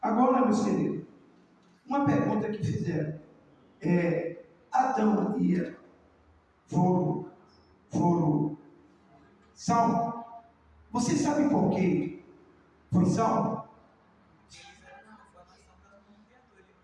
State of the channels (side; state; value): both; identical; correlation 1.00